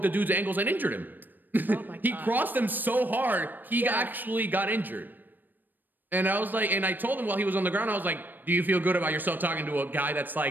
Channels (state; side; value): late; left; 0.090 ms